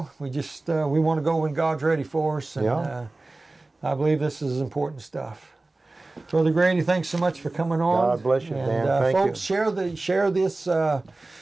We just we want to go when God's ready for us, and I believe this is important stuff. Brother Grady, thanks so much for coming on. God bless you, and, man. Thank folks, you. Share this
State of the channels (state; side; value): quieter; left; 3.1 dB